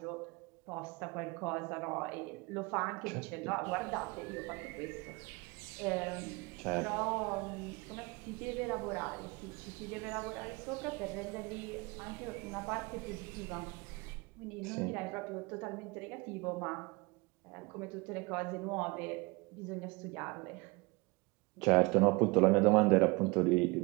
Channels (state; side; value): quieter; left; 26.3 dB